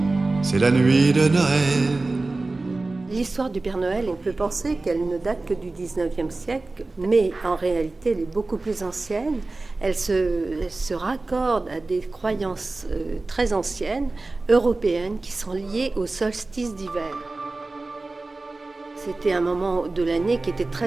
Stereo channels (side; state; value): left; quieter; 3.3 dB